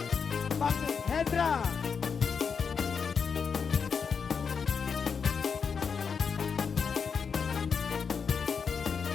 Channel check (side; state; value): right; quieter; 6.1 dB